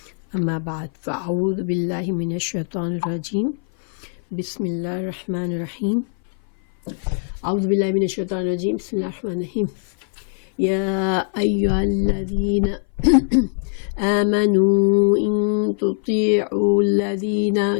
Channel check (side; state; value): right; silent; 58 dB below the other